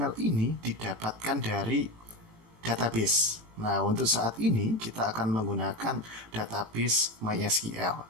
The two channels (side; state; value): left; late; 18 ms